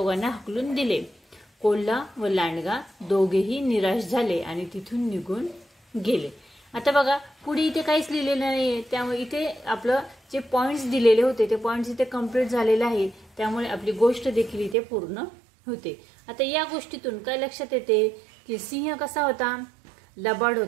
हाकलून दिले। कोल्हा व लांडगा दोघेही निराश झाले आणि तिथून निघून गेले। आता बघा, पुढे इथे काहीच लिहिलेलं नाहीये, त्यामुळे इथे आपलं जे पॉइंट्स दिलेले होते ते पॉइंट्स इथे कंप्लीट झालेले आहे, त्यामुळे आपली गोष्ट देखील इथे पूर्ण होते। आता या गोष्टीतून काय लक्षात येते की सिंह कसा होता, लबाड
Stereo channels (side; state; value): left; drops out; at 14.8 s